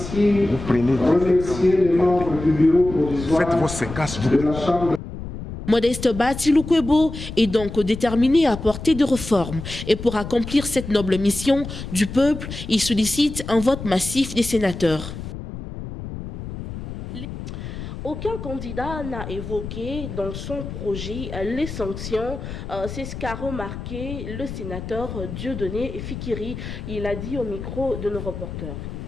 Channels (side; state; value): left; noise; rumble, 9 dB below the sound